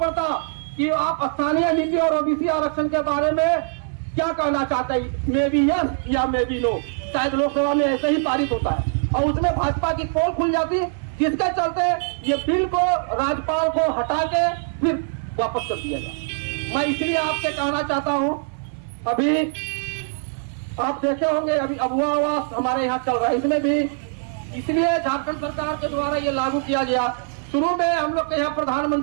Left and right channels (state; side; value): silent; left; 64 dB below the other